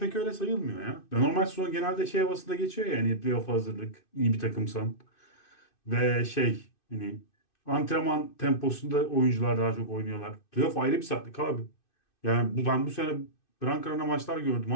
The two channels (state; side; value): late; right; 2.6 ms